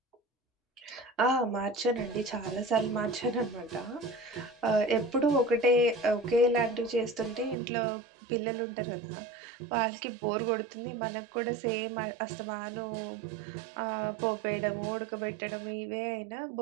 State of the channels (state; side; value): drops out; left; at 7.6 s